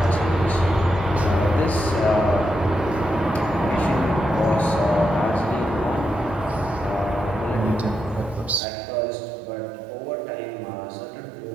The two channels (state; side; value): drops out; left; at 8.6 s